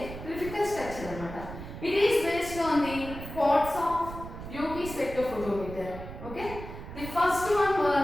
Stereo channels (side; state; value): right; noise; rumble, 11 dB below the sound